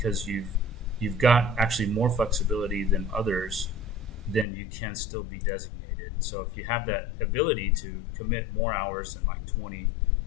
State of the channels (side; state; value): right; drops out; at 4.5 s